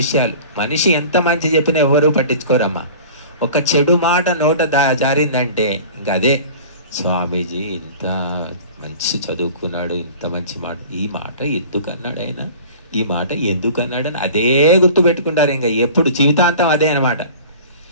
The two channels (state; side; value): inverted; both; correlation -0.41